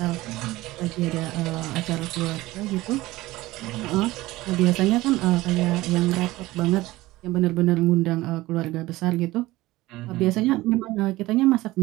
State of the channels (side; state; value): left; quieter; 18.4 dB